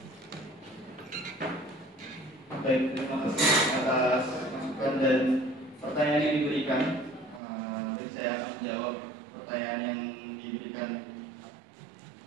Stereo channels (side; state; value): left; drops out; at 7.4 s